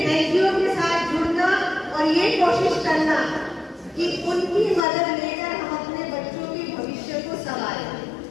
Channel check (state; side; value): drops out; right; at 4.9 s